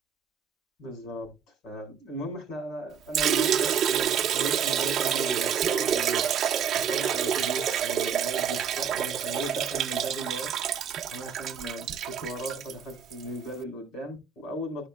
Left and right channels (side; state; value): left; quieter; 7.1 dB